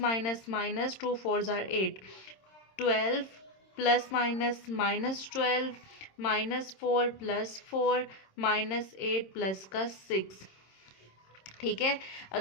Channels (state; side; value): late; right; 26 ms